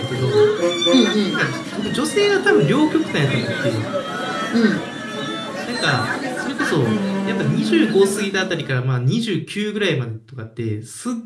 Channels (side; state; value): both; identical; correlation 1.00